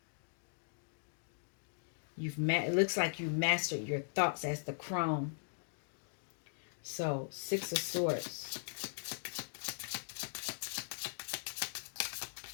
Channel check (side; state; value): right; silent; digital silence